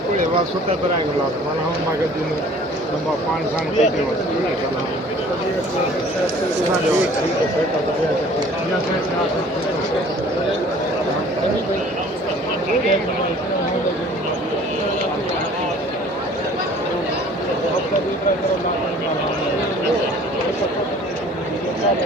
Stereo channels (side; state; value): both; normal; correlation 0.51